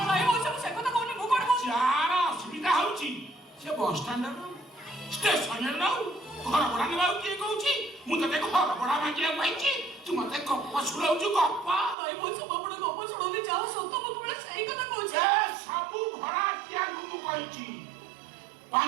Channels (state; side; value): drops out; left; at 12.0 s